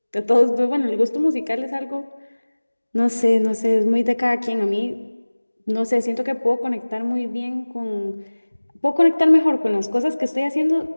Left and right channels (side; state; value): both; inverted; correlation -1.00